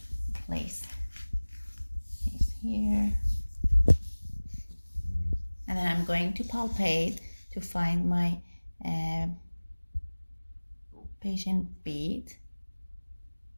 place this here, and then I'm going to palpate to find my patient beat.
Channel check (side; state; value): both; inverted; correlation -1.00